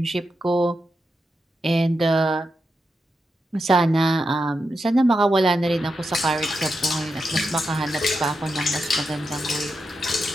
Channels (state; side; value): normal; both; correlation 0.87